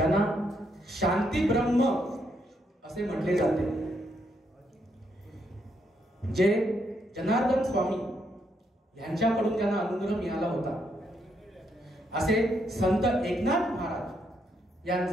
शांती ब्रह्म असे म्हटले जाते, जे जनार्दन स्वामी यांच्याकडून त्यांना अनुग्रह मिळाला होता, असे संत एकनाथ महाराज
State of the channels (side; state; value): both; normal; correlation 0.76